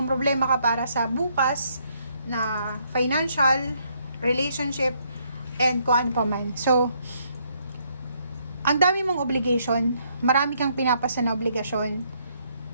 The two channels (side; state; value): both; inverted; correlation -0.71